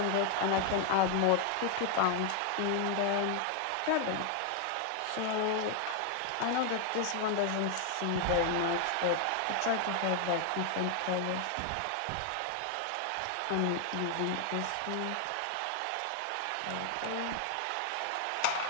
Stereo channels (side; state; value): both; different; correlation 0.00